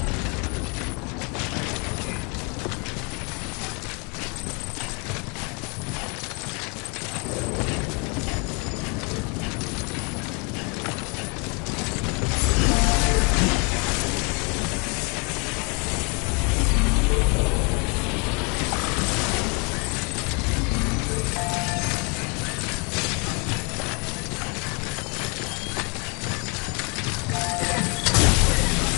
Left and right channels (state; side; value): quieter; right; 32.8 dB